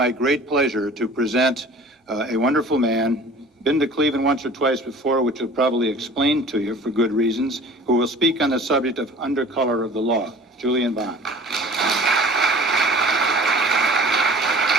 great pleasure to present a wonderful man, been to Cleveland once or twice before, which will probably explain to you for good reasons, who will speak on the subject of undercolor of the law, Julian Bond.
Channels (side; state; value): both; normal; correlation 0.45